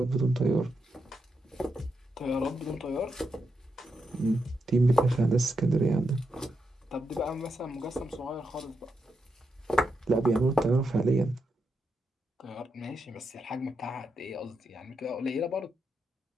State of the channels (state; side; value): normal; both; correlation 0.84